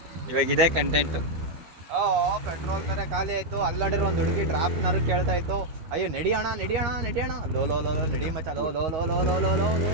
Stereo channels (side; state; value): left; late; 13 ms